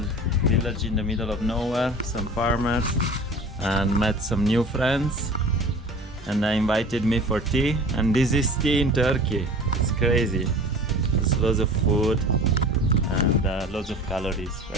village in the middle of nowhere, some farmers, and met some new friends. And they invited me for tea, and this is tea in Turkey. It's crazy. There's lots of food and lots of calories.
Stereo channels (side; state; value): both; normal; correlation 0.41